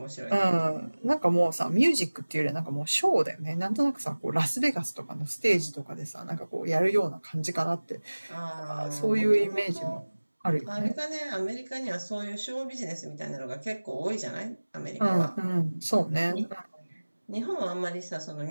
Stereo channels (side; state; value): both; inverted; correlation -1.00